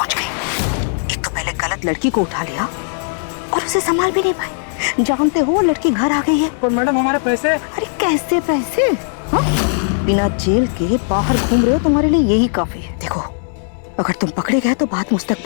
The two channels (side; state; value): right; silent; digital silence